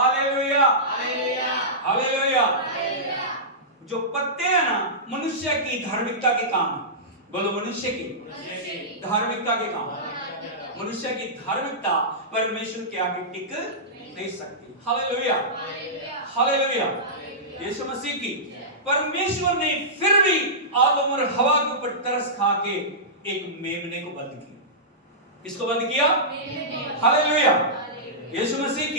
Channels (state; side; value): normal; both; correlation -0.16